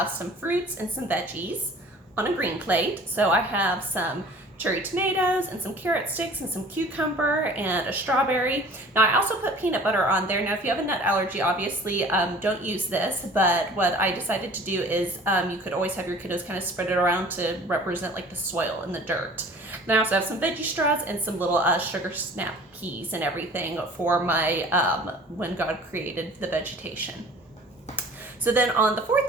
some fruits and some veggies on a green plate. So I have some cherry tomatoes and some carrot sticks and some cucumber and a strawberry. Now I also put peanut butter on there. Now if you have a nut allergy, obviously don't use this, but what I decided to do is you could always have your kiddos kind of spread it around to represent like the soil and the dirt. Then I also have some veggie straws and some little sugar snap peas and everything for my when God created the vegetation. So then on the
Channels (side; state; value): both; normal; correlation 0.47